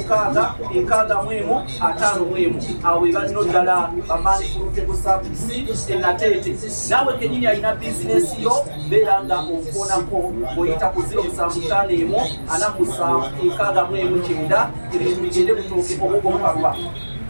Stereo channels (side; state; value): both; inverted; correlation -1.00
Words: awo we balino ddala bamaani pulutable service enateete naawe kenyini alina bizinesi yo beera nga okuonako ng'oyita ku 07544769 ebintu bigende butooke obwogomukalwa